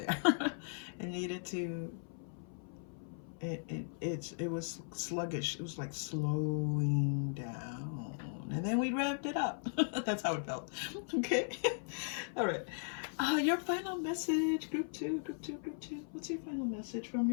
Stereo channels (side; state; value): right; silent; 53 dB below the other